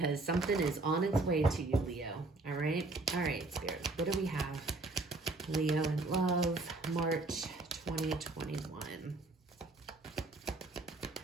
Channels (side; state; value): left; quieter; 3.2 dB